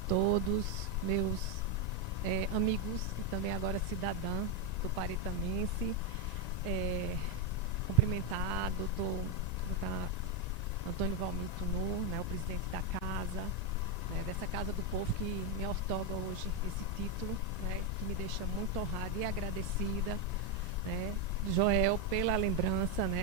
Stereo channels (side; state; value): right; late; 1.9 ms